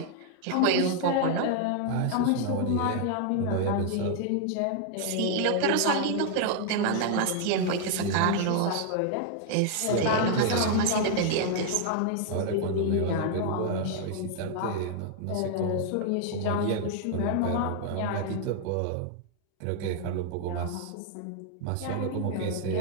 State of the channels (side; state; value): both; different; correlation 0.00